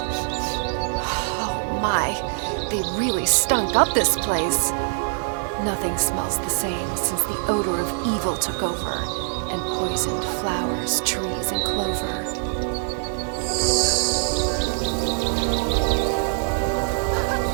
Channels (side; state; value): left; silent; 63 dB below the other